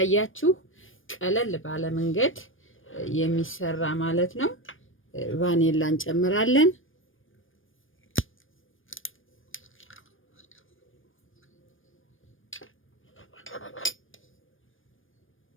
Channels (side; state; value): right; late; 0.58 ms